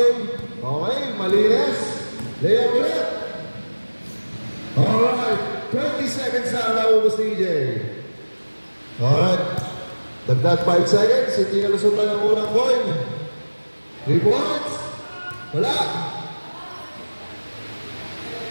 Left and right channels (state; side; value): inverted; both; correlation -1.00